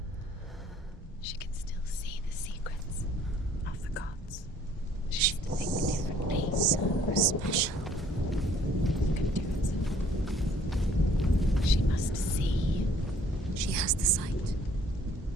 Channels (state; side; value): normal; both; correlation 0.58